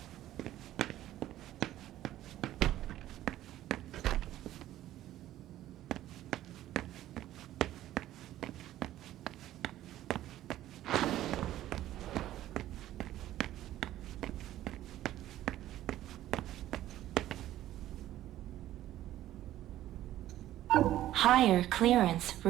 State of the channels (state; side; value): quieter; left; 13.6 dB